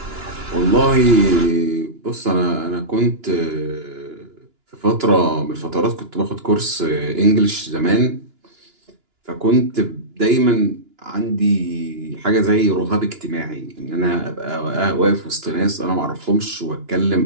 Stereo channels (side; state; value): left; late; 2.9 ms